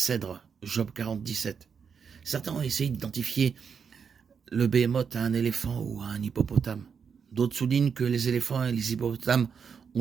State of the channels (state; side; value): quieter; left; 6.5 dB